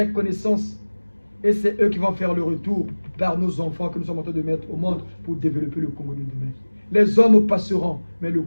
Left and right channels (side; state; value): both; inverted; correlation -1.00